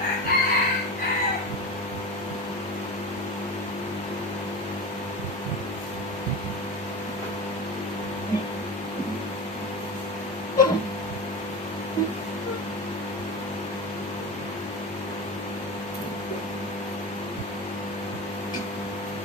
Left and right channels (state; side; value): normal; both; correlation 0.26